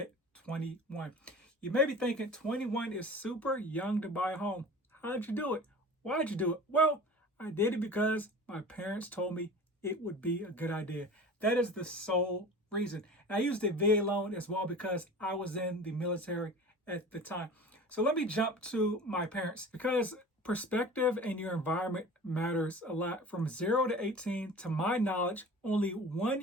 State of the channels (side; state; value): both; normal; correlation 0.39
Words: 21. You may be thinking 21 is super young to buy a home. How'd you do it? Why'd you do it? Well, I did it because my parents told me it would be a good idea. That is the sole reason. And I used a VA loan as well because I was in the military at the time. So let me jump to my parents because perspective and your environment matters a lot. From 0 to 18, to my knowledge, only 1